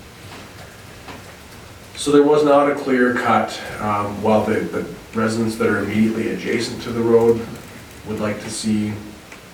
So there was not a clear cut. While the residents that are immediately adjacent to the road would like to see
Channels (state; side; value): identical; both; correlation 1.00